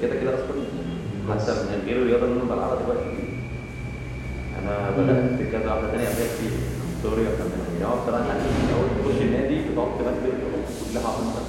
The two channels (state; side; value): identical; both; correlation 1.00